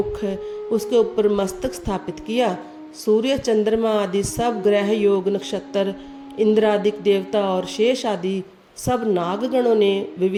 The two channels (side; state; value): both; identical; correlation 1.00